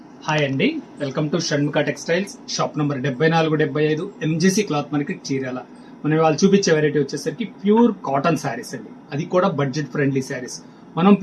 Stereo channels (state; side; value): identical; both; correlation 1.00